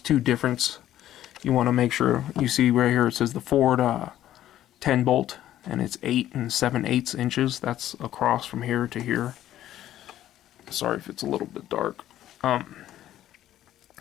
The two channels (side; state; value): right; quieter; 12.7 dB